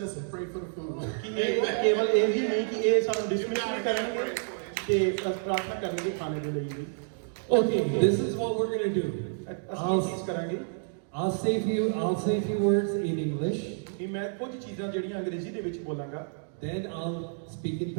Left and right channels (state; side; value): silent; left; digital silence